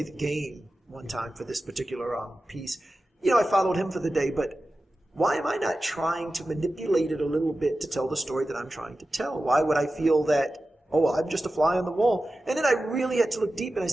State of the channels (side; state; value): both; normal; correlation 0.94